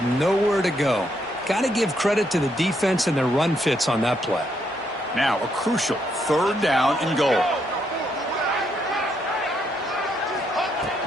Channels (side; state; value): both; normal; correlation 0.76